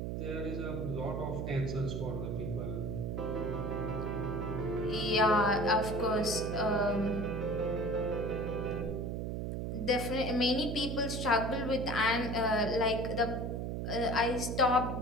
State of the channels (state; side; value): noise; right; hum, 3 dB below the sound